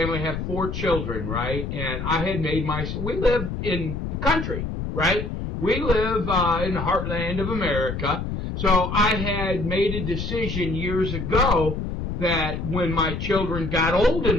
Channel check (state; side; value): noise; left; rumble, 5 dB below the sound